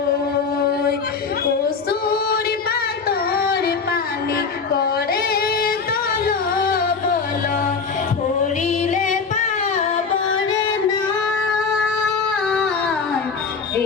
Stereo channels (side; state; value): right; quieter; 5.2 dB